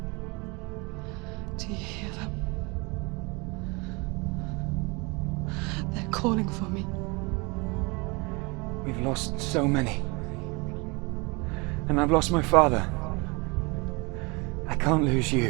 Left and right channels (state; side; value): quieter; left; 27.9 dB